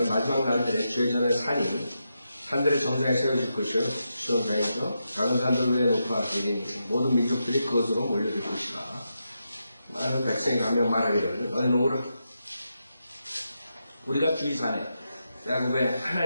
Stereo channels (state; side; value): inverted; both; correlation -0.85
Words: 마지막 날들에 주의 전에 산들의 정상에 세워질 것이요, 시온산이죠. 작은 산들 위에 높아 이르니 모든 민족들이 그것으로 몰려들 것이라. 많은 백성이 가며 말하기를 너희는 오라. 우리가 주의 산에 야곱의